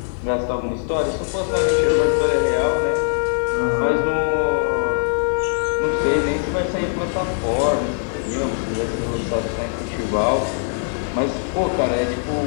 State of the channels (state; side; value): silent; right; 65 dB below the other